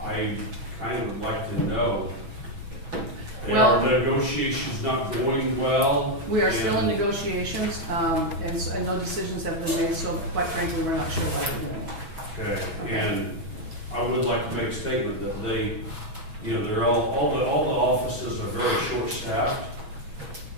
kind of would like to know. Are the negotiations not going well? We are still in negotiations, and no decisions have been made, so quite frankly, we're not sure what we're doing. Okay, and I would like to make a statement that they, they're all the offices are very short-staffed.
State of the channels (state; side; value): late; left; 6.2 ms